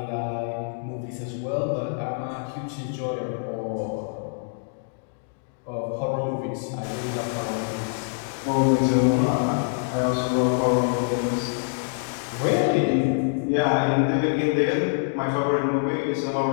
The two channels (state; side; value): silent; right; digital silence